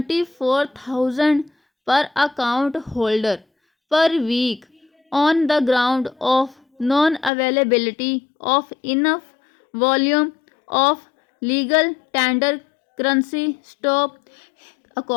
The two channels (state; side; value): drops out; right; at 7.3 s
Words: per account holder per week on the ground of non availability of enough volume of legal tender currency. Stop.